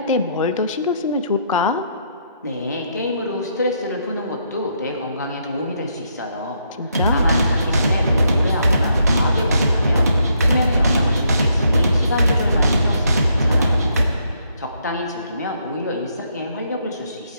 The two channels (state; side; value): inverted; both; correlation -0.75